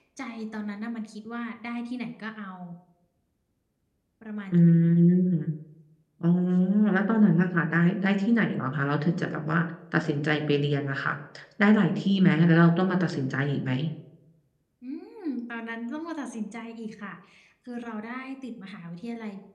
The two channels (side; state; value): both; identical; correlation 1.00